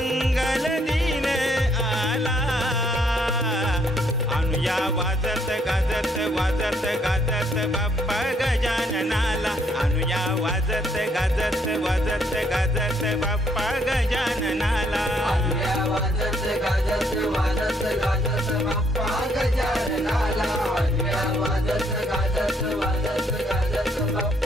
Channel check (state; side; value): normal; both; correlation 0.69